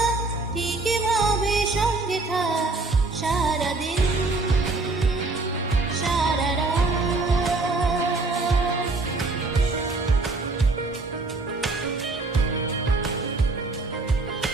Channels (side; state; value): left; quieter; 3.4 dB